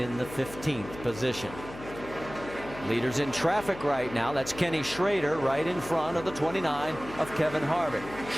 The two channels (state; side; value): noise; left; hum, 14 dB below the sound